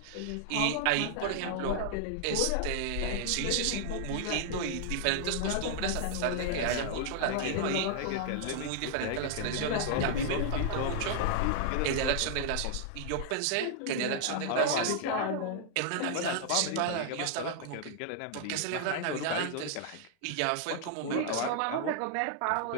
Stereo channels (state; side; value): different; both; correlation -0.01